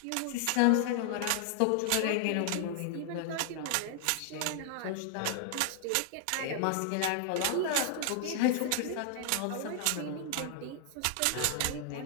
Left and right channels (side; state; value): both; different; correlation 0.00